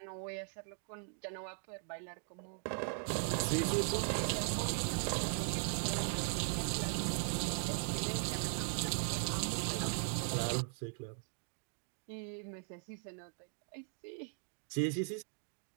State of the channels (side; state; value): left; silent; 52 dB below the other